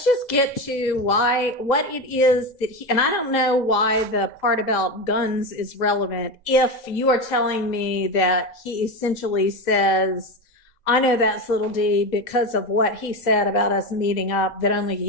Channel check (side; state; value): right; late; 2.0 ms